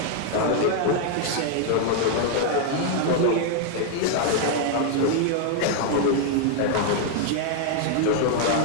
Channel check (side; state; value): both; different; correlation 0.00